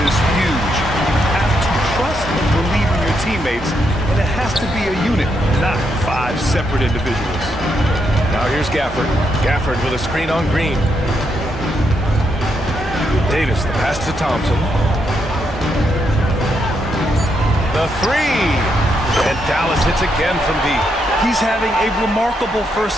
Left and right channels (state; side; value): normal; both; correlation 0.79